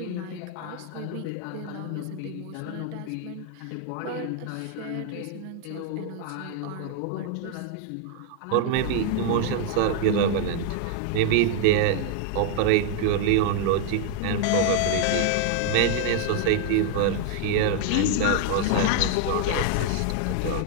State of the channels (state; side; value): different; both; correlation 0.00